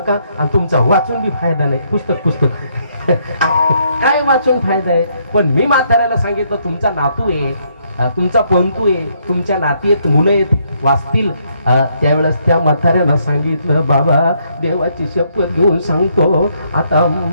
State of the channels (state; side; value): inverted; both; correlation -0.72